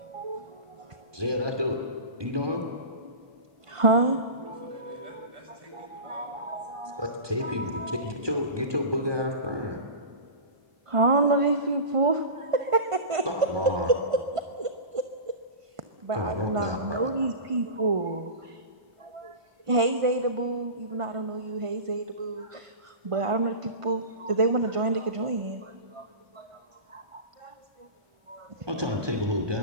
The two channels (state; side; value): late; left; 1.5 ms